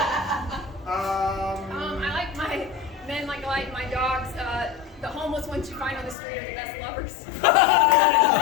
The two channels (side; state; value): right; drops out; at 6.2 s